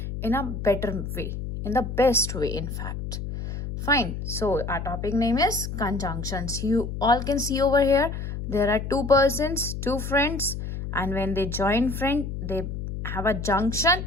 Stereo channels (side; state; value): left; noise; hum, 6 dB below the sound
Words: in a better way, in the best way, in fact. Fine. So our topic name is conjunctions. You all can see over here, there are two persons, two friends, and when they join friend, they have a junction,